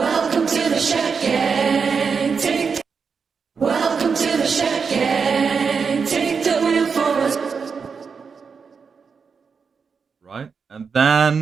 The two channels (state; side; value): quieter; left; 5.6 dB